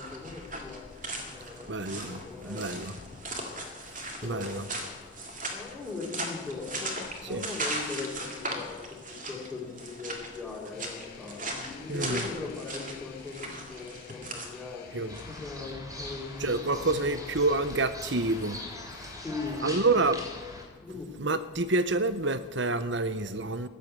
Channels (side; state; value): both; normal; correlation 0.03